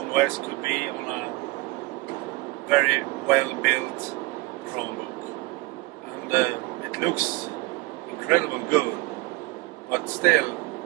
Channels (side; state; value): left; quieter; 21.8 dB